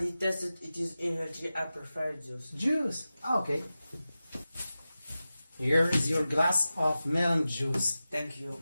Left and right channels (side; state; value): both; inverted; correlation -0.94